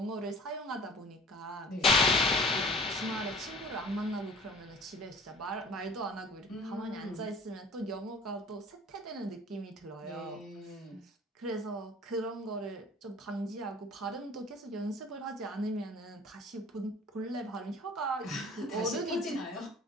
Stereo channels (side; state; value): both; normal; correlation 0.47